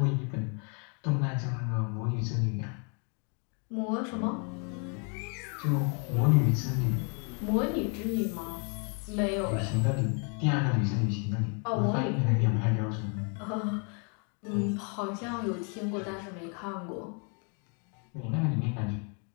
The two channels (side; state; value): right; quieter; 37.9 dB